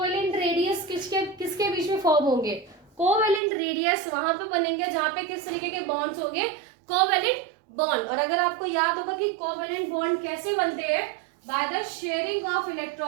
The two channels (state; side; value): drops out; left; at 3.4 s